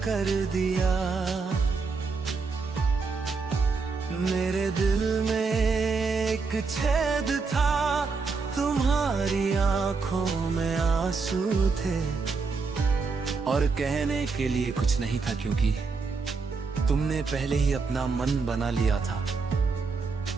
कर दिया। मेरे दिल में एक छेद था, तुम्हारी आंखों में आंसू थे, और कहने के लिए कुछ नहीं था क्योंकि तुमने पहले ही अपना मन बना लिया था।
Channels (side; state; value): left; quieter; 4.6 dB